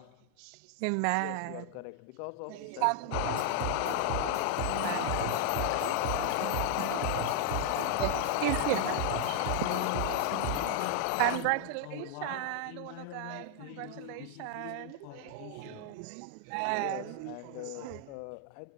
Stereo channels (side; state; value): both; different; correlation 0.00